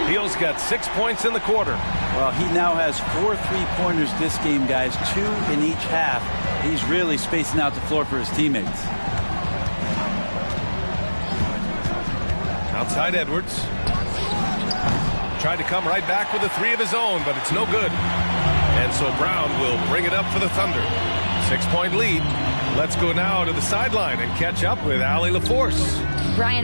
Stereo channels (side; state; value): both; inverted; correlation -1.00